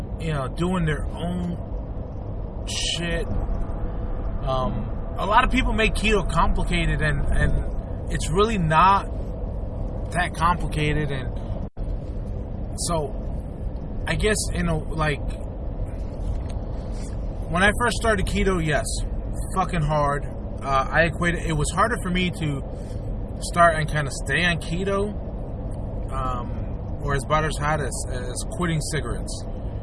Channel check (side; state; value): both; identical; correlation 1.00